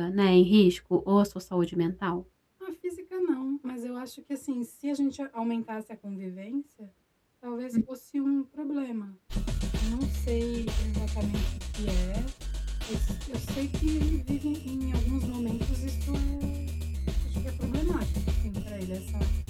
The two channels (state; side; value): identical; both; correlation 1.00